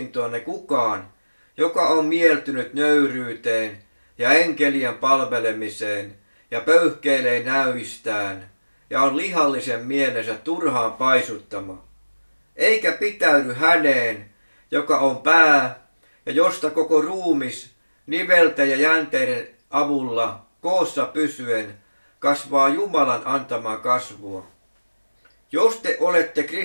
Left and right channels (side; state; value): both; inverted; correlation -1.00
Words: kukaan, joka on mieltynyt nöyryyteen ja enkelien palvelemiseen ja pöyhkeilee näyistään ja on lihallisen mielensä turhaan paisuttama. eikä pitäydy häneen, joka on pää ja josta koko ruumis nivelten ja jänteiden avulla koossa pysyen kasvaa Jumalan antamaa kasvua. Jos te olette